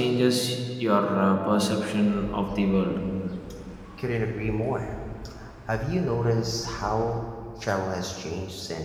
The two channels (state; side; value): identical; both; correlation 1.00